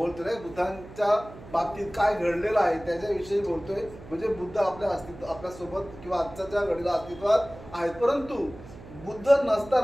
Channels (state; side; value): noise; right; hum, 17 dB below the sound